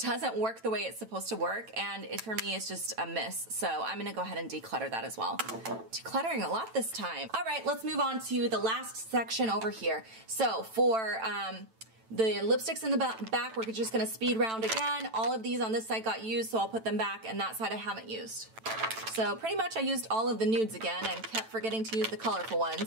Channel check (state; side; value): late; left; 9.0 ms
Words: work the way it's supposed to work, and for me it's just a miss. So I'm gonna go ahead and declutter that as well. Decluttering a lot this time. All right, let's move on to the last section over here. So for the lipsticks in the back, we're just gonna speed round again. All of these on this side got used, so I'll put them back, and that side I haven't used. So pretty much I used all of the nudes again and kept forgetting to use the colorful